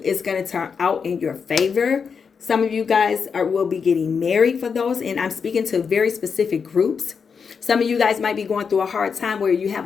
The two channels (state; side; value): quieter; right; 6.0 dB